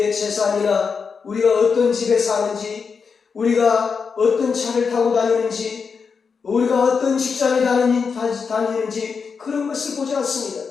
재산이나 우리가 어떤 집에 사는지, 우리가 어떤 차를 타고 다니는지, 우리가 어떤 직장에 다니는지 그런 것을 보지 않습니다.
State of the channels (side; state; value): right; quieter; 5.6 dB